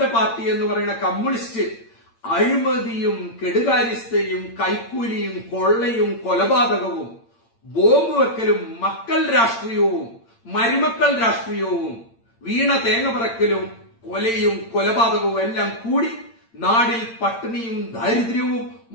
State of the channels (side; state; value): right; late; 8.8 ms